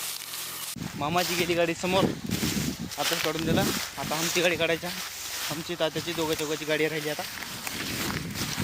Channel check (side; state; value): both; identical; correlation 1.00